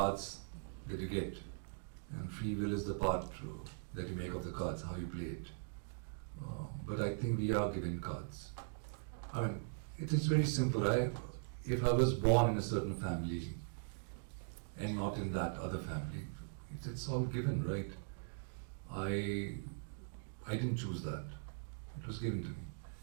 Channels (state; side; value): silent; left; digital silence